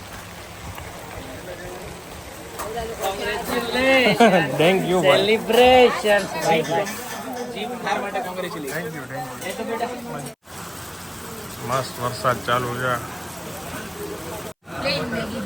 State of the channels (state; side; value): identical; both; correlation 1.00